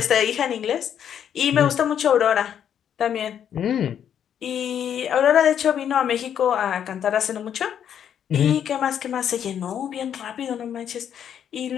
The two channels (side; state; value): right; quieter; 9.1 dB